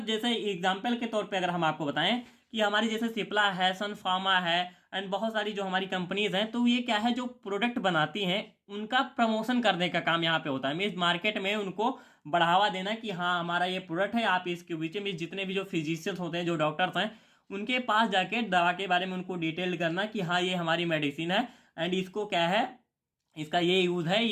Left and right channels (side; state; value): both; identical; correlation 1.00